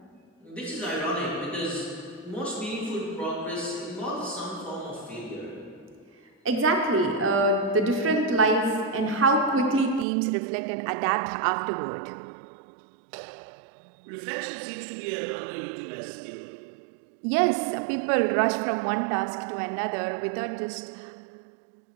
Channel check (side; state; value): left; drops out; at 10.1 s